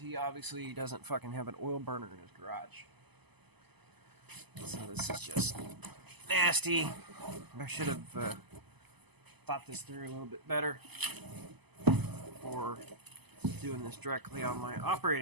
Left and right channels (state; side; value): late; left; 0.99 ms